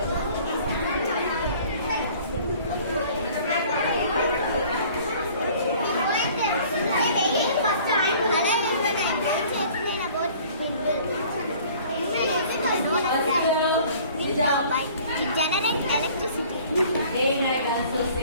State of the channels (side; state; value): both; inverted; correlation -0.51